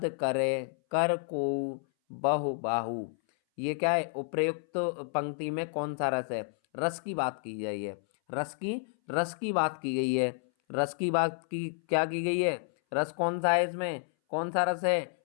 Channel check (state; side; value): silent; right; 57 dB below the other